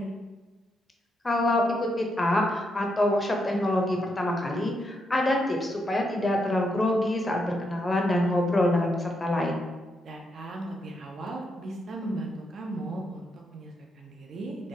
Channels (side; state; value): both; normal; correlation 0.80